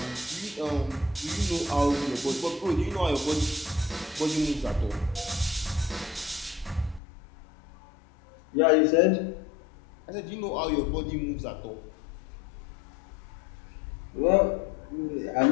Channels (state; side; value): drops out; right; at 7.0 s